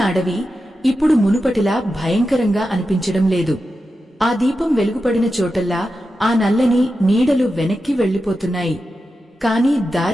అడవి ఇప్పుడు మునుపటిలా భయంకరంగా అనిపించడం లేదు. ఆ దీపం వెలుగుపడిన చోటల్లా ఆ నల్లని నీడలు వెనక్కి వెళ్లిపోతున్నాయి. కాని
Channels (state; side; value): normal; both; correlation 0.90